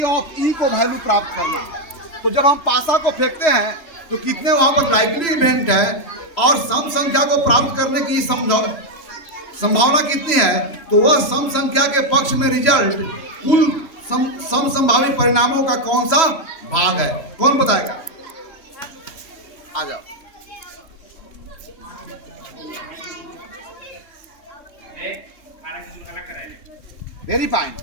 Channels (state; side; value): late; right; 3.0 ms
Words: ऑफ E को वैल्यू प्राप्त करना है। तो जब हम पासा को फेंकते हैं तो कितने वहां पर लाइकली इवेंट है और सम संख्या को प्राप्त करने की संभावना कितनी है? तो वह सम संख्या के पक्ष में रिजल्ट कुल सम संभावी परिणामों का कौन सा भाग है? कौन बताएगा? आ जाओ। Very fine.